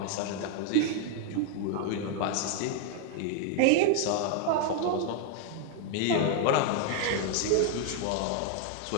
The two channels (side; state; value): both; different; correlation 0.00